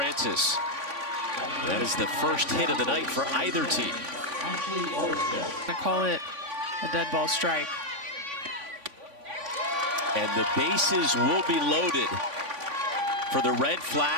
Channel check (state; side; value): late; left; 3.5 ms